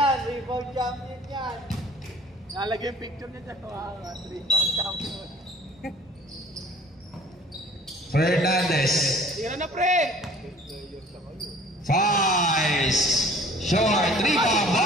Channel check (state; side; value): normal; both; correlation 0.50